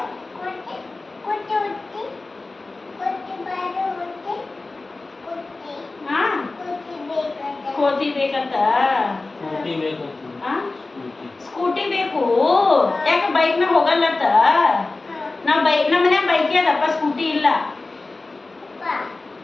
ಕೋತಿ ಬೇಕಂತ ಸ್ಕೂಟಿ ಬೇಕು ಯಾಕೆ ಬೈಕ್ ಮ್ಯಾಗ ಹೋಗಲ್ಲತ್ತ ನಮ್ಮ ಮನ್ಯಾಗ ಬೈಕ್ ಅದಪ್ಪ ಸ್ಕೂಟಿ ಇಲ್ಲ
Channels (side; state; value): right; quieter; 3.4 dB